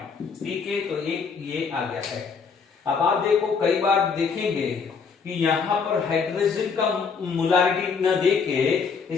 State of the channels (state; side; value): quieter; right; 5.6 dB